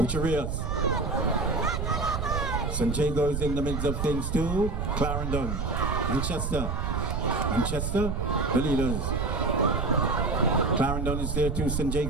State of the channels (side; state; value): right; noise; rumble, 1 dB below the sound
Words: St. Jago is in the midst of things too. Clarendon, Manchester, the leaders. Clarendon is there too, St.